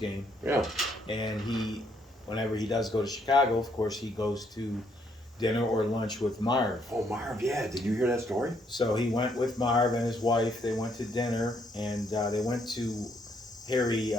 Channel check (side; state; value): both; normal; correlation 0.71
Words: Yeah. and whenever he does go to Chicago, of course, he goes to dinner or lunch with Marv. Oh, Marv, yeah. Did you hear that story? So he went with Marv and his wife. They went to dinner, and they went to Harry.